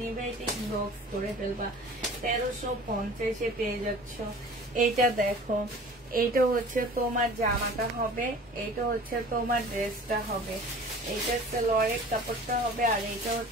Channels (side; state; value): both; normal; correlation 0.44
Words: নিবে এটা ইনবক্স করে ফেলবা। 1350-এ পেয়ে যাচ্ছ। এইটা দেখো, এইটা হচ্ছে তোমার জামাটা হবে, এইটা হচ্ছে তোমার ড্রেসটা হবে, এইটা সালোয়ারের কাপড়টা হবে, আর এইটা